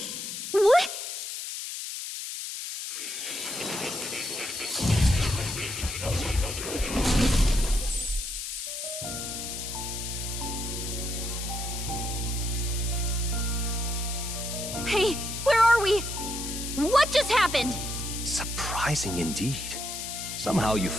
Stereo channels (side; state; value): left; noise; hiss, 6 dB below the sound